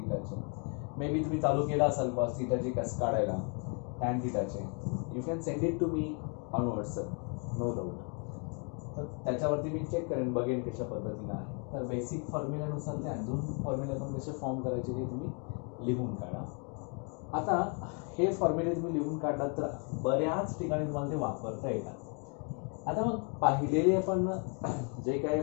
मे बी तुम्ही चालू केला असाल कॉस थीटाचे कसं काढायला, टॅन थीटाचे. You can send it to me on WhatsApp, no doubt. तर त्याच्यावरती मी चेक करेन, बघेन कशा पद्धतीनं आहे. तर बेसिक फॉर्म्युल्यानुसार ते अजून फॉर्म्युले पण कसे फॉर्म करायचे ते तुम्ही लिहून काढा. आता हे फॉर्म्युले तुम्ही लिहून काढलात तर बऱ्याच ठिकाणी तुम्हाला ते वापरता येतात. आता मग पाहिलेले आपण जे काही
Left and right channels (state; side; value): quieter; right; 37.9 dB